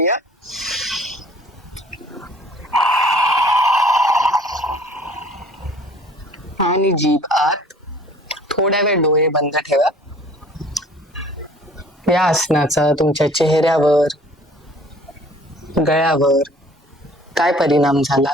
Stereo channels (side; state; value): both; normal; correlation 0.52